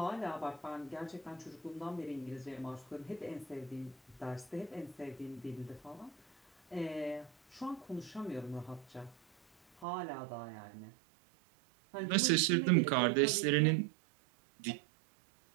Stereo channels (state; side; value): drops out; left; at 9.9 s